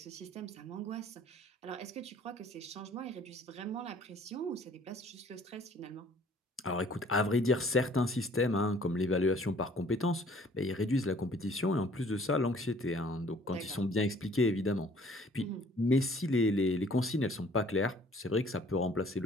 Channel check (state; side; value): normal; both; correlation 0.56